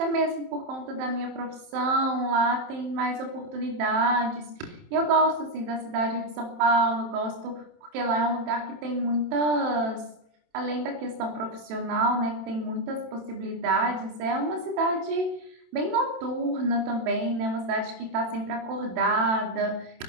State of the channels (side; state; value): left; late; 27 ms